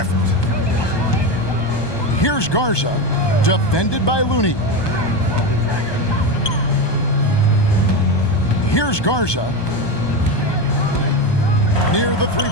Here's Garza, defended by Looney. Here's Garza. Near the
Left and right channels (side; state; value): right; late; 1.2 ms